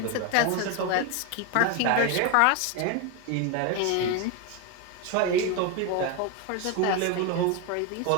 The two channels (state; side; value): different; both; correlation 0.02